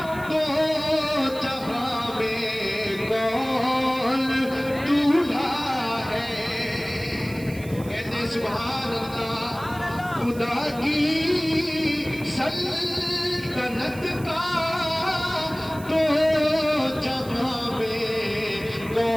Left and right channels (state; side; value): noise; right; hiss, 19 dB below the sound